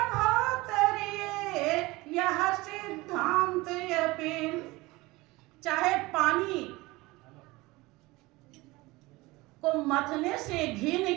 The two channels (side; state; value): left; quieter; 21.4 dB